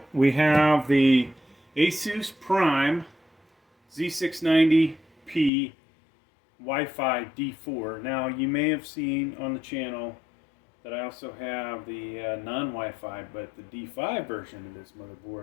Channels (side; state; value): right; drops out; at 5.5 s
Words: we have the Asus Prime Z690p Wi-Fi D4. Now, you may have seen on the channel that I also have the non-Wi-Fi, but the D5 version of this